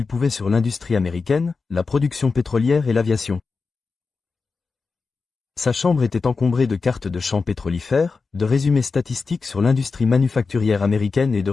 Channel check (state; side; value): quieter; right; 4.5 dB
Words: pouvait sur l'industrie américaine, la production pétrolière et l'aviation. Sa chambre était encombrée de cartes de champs pétrolifères, de résumés statistiques sur l'industrie manufacturière américaine et de